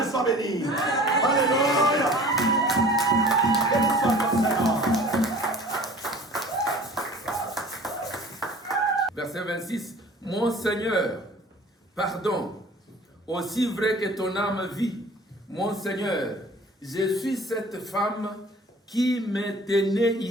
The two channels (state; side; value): normal; both; correlation 0.46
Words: soit béni. Alléluia. Béni soit le Seigneur. Verset 26. Mon Seigneur, pardon, aussi vrai que ton âme vit, mon Seigneur, je suis cette femme qui me tenait